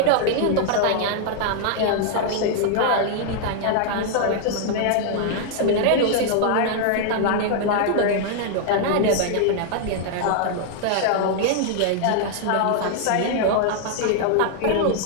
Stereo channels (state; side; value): different; both; correlation 0.00